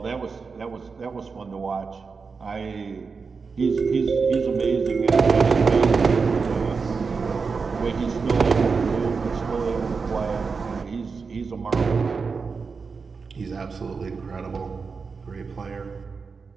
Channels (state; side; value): quieter; left; 5.0 dB